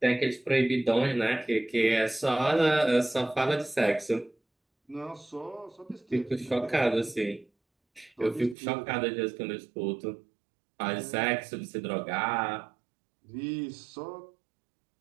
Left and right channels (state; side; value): drops out; left; at 8.6 s